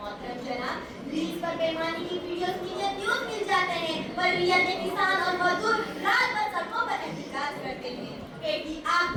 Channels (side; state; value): both; identical; correlation 1.00